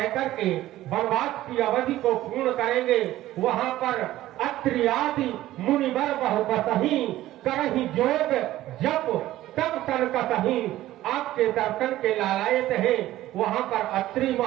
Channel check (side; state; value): left; quieter; 14.9 dB